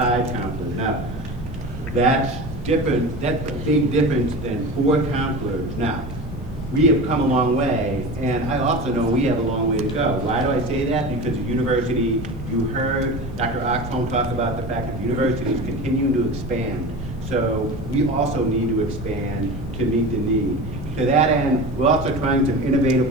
Now, that's different. That's a big difference than 4 counselors. Now, we have come a long way, and I also know we have a long way to go. Why do I say that? Because the university, you heard Dr. Oxholm talk about the fact that the university is continuing to expand. So we also need to expand to meet the need. To that end, we're also trying some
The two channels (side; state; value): both; normal; correlation 0.30